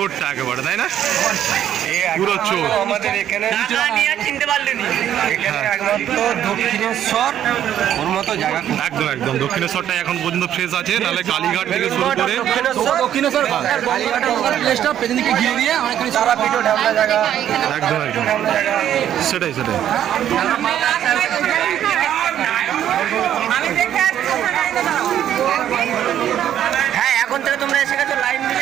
একেবারে, তাই না? পুরো চোর আমাদের এখানে চিনতে পারলেন এখানে একমাত্র দক্ষিণেশ্বর ওর মতো জায়গা। একদম একদম দক্ষিণেশ্বরটা এখন পর্যন্ত ফ্রেশ আছে, নাহলে কালীঘাট থেকে শুরু করে দক্ষিণেশ্বর কালীঘাটের পেছনদিকে ঘিরে দিয়ে অনেকখানি সারা পিঠো ঢামনা জায়গা। একদম একদম সেটাই সেটাই। হ্যাঁ, এখন থেকে তোমরা এসে গেছো লাইন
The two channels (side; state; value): left; quieter; 10.7 dB